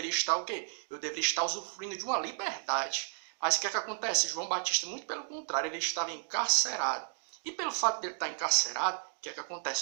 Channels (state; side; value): silent; left; digital silence